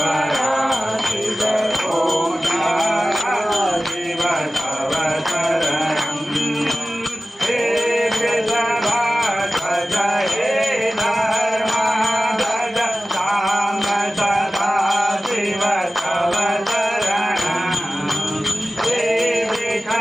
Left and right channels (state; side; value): normal; both; correlation 0.96